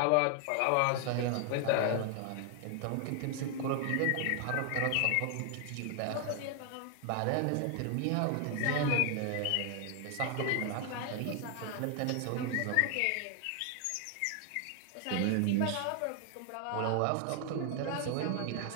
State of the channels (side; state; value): both; different; correlation 0.00